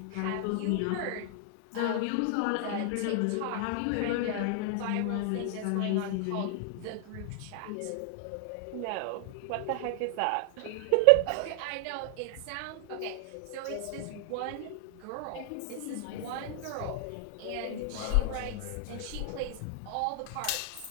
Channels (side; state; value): both; different; correlation 0.00